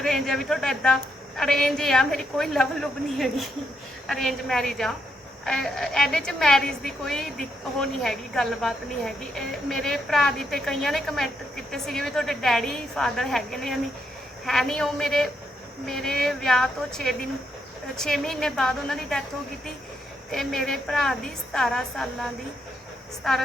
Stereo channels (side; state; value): both; normal; correlation 0.79